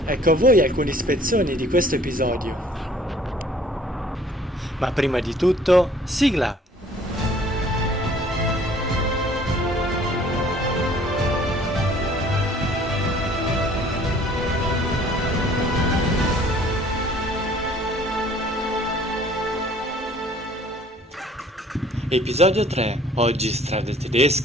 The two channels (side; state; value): both; normal; correlation 0.55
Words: Ecco a voi alcune spezzoni di questo episodio. Ma prima di tutto, sigla! Episodio 3. Oggi strade